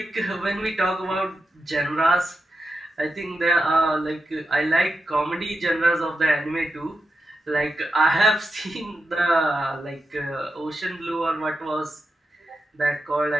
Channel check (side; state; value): both; normal; correlation 0.88